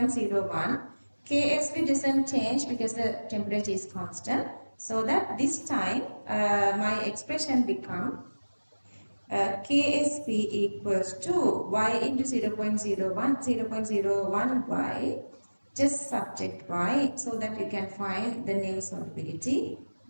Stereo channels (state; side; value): inverted; both; correlation -1.00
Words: KSV doesn't change because the temperature is constant. So that this time my expression become KSP equals to Y into 0.01 Y, just subject Y, so that you can find the new solubility.